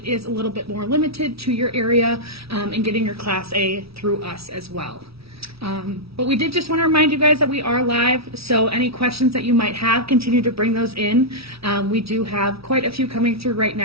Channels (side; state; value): left; late; 0.76 ms